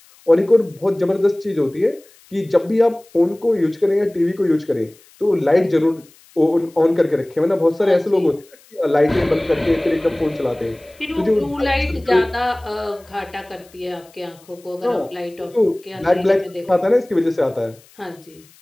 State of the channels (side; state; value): left; noise; hiss, 28 dB below the sound